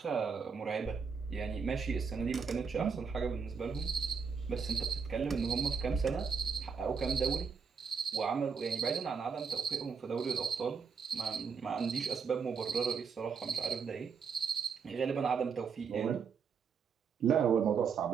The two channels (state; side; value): quieter; left; 5.8 dB